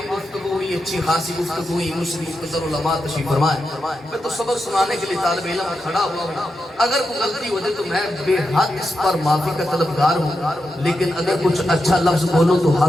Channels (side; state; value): both; normal; correlation 0.87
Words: گفتگو ہوئی، اچھی خاصی گفتگو ہوئی، مسلم مختصر علماء تشریف فرمائے۔ میں تو سبق سنانے کے لیے طالب علم میں کھڑا ہوا ہوں، اگر کوئی غلطی ہو جائے تو میں بے حد اس پر معافی کا طلبگار ہوں، لیکن اگر کچھ اچھا لفظ بولو تو